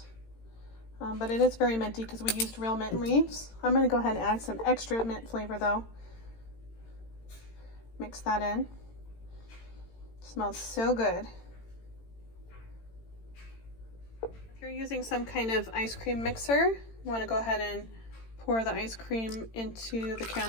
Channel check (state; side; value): late; right; 18 ms